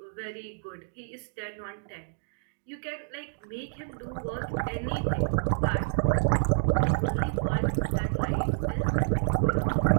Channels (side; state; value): left; silent; digital silence